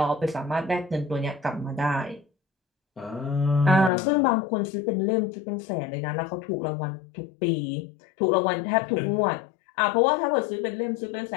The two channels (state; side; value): drops out; right; at 3.9 s